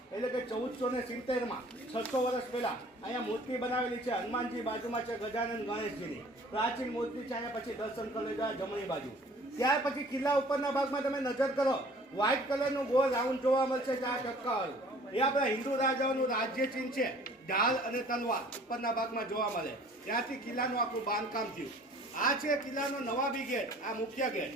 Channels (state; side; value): normal; both; correlation 0.51